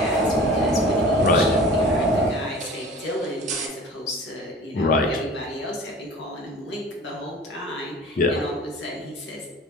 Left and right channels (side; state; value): both; normal; correlation 0.41